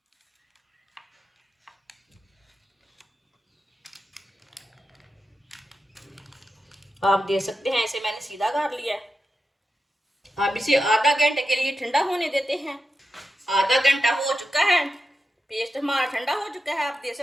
आप देख सकते हैं इसे मैंने सीधा कर लिया है। अब इसे आधा घंटे के लिए ठंडा होने देते हैं। आधा घंटा हो चुका है, पेस्ट हमारा ठंडा हो चुका है, आप देख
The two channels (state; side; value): normal; both; correlation 0.89